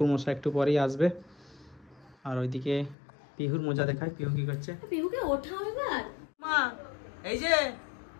মশাই একটু পরেই আসবে। আর ওইদিকে পিহুর মজা দেখায়। পিহু কি করছে? পিহুকে ওঠাও এবার। মা এই যে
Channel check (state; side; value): drops out; right; at 3.0 s